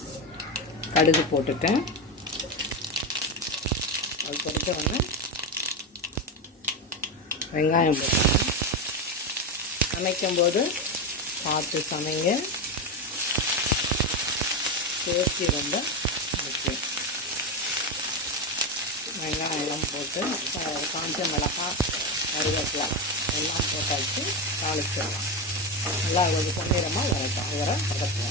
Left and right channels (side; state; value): both; normal; correlation 0.14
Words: கடுகு போட்டுட்டேன். அது பொறுத்த உடனே வெங்காயம் போட்டுட்டேன். சமைக்கும்போது பார்த்து சமைங்க, சேஃப்டி ரொம்ப முக்கியம். வெங்காயம் போட்டு காஞ்ச மிளகாய், கருவேப்பிலை எல்லாம் போட்டாச்சு, தாளிச்சிடலாம். நல்லா ஒரு பொன்னிறமாக வரட்டும், வர